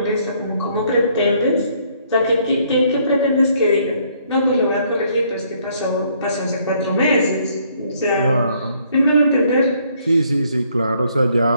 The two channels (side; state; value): both; inverted; correlation -0.66